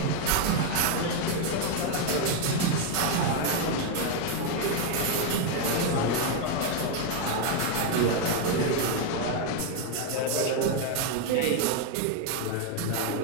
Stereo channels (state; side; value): different; both; correlation 0.01